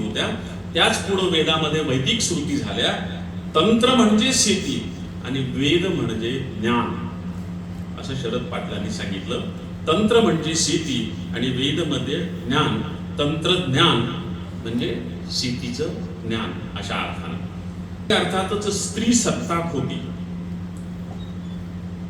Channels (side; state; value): both; identical; correlation 1.00